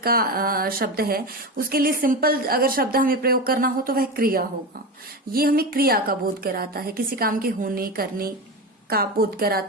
शब्द है, उसके लिए सिंपल अगर शब्द हमें प्रयोग करना हो तो वह क्रिया होगा। ये हमें क्रिया का बोध कराता है, किसी काम के होने करने का बोध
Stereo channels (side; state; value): both; normal; correlation 0.22